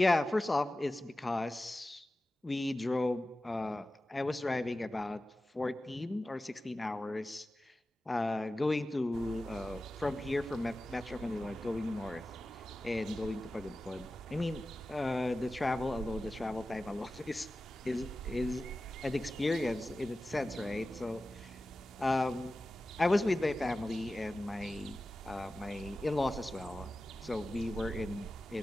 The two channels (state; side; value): normal; both; correlation 0.95